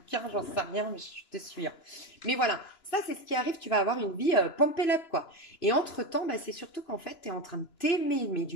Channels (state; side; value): late; right; 2.9 ms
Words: j'en sais rien, mais je te suis, hein. Mais voilà, ça, c'est ce qui arrive, tu vas avoir une vie pump it up, quoi. Et entre-temps, bah, c'est surtout qu'en fait, tu es en train de t'aimer, mais